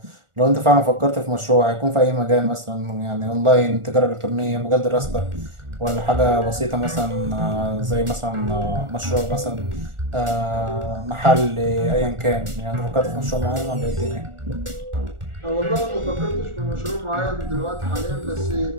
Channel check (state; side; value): late; left; 1.4 ms